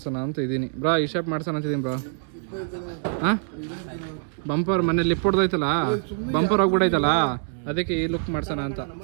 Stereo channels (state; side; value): silent; left; digital silence